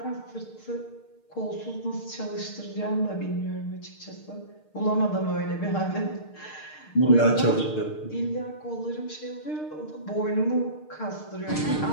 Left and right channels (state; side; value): late; right; 6.6 ms